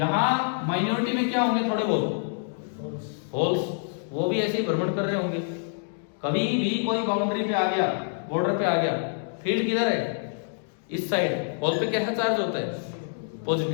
माइनॉरिटी में क्या होंगे, थोड़े बहुत होल्स, वो भी ऐसे ही भ्रमण कर रहे होंगे। कभी भी कोई बाउंड्री पे आ गया, बॉर्डर पे आ गया, फील्ड किधर है, इस साइड, होल पे कैसा चार्ज होता है,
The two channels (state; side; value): silent; right; digital silence